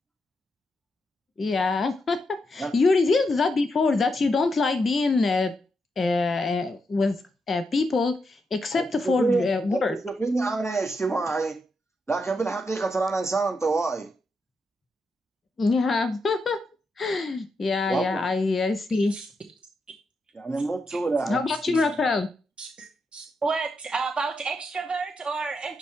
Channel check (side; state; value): both; normal; correlation 0.83